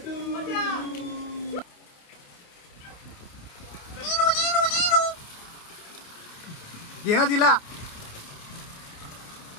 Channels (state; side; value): late; right; 28 ms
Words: घे ना तिला।